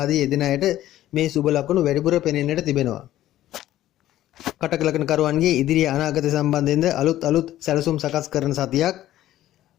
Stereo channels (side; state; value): right; quieter; 13.7 dB